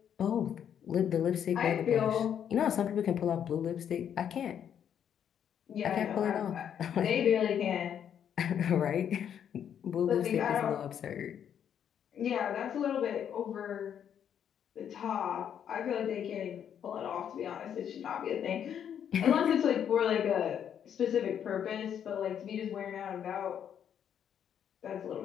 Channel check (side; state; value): right; quieter; 8.9 dB